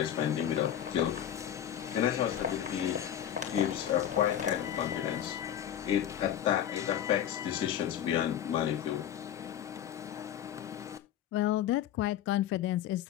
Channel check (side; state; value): right; quieter; 10.5 dB